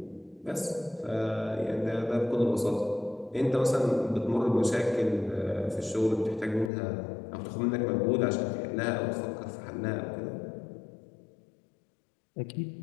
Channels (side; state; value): right; drops out; at 6.7 s